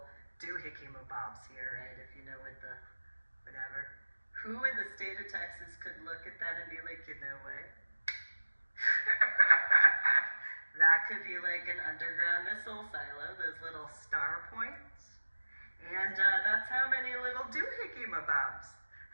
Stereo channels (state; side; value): inverted; both; correlation -1.00